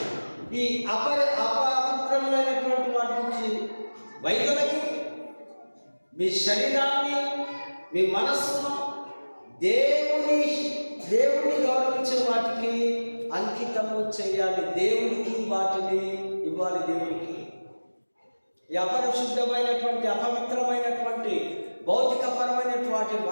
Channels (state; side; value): inverted; both; correlation -1.00